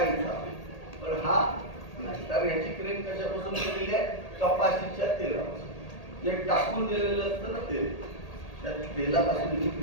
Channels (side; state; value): right; late; 1.8 ms